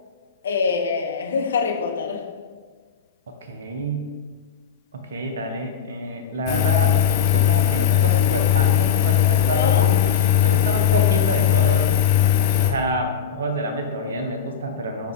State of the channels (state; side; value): quieter; right; 7.6 dB